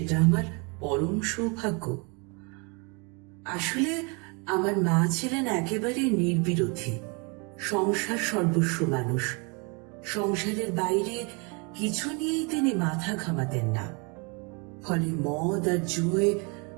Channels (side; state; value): left; quieter; 31.9 dB